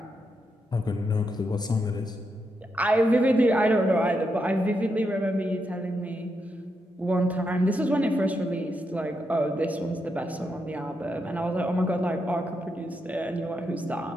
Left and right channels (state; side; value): normal; both; correlation 0.83